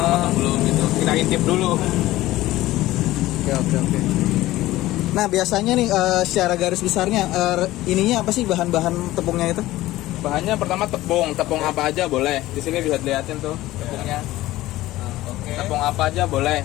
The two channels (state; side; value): quieter; right; 16.6 dB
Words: matang belum gitu. Kita intip dulu. Oke. Nah biasanya nih secara garis besarnya ininya apa sih bahan-bahan tepungnya itu? Bahannya pertama tepung apa aja boleh. Di sini bisa dilihatin tuh tepungnya. Tepung apa aja boleh.